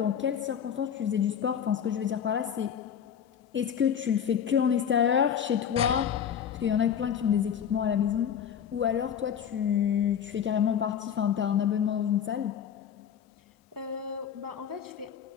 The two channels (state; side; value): quieter; right; 8.5 dB